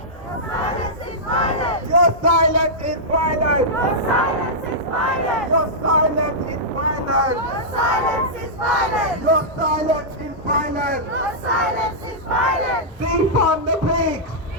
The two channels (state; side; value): normal; both; correlation -0.11